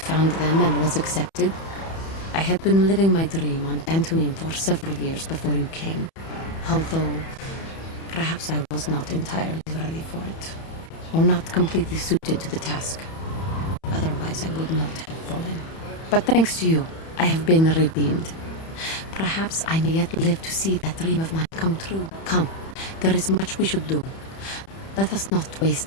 found them and was accepted. I had been living my dream on Dantooine for several years before you came, although perhaps I was not entirely ready for it, or not completely suited to the task. Otherwise I would not have fallen. But thanks to you, I have been redeemed. Perhaps I may yet live to see that dream of mine come true. Come, there is much we should do. Let us not waste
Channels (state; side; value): late; right; 31 ms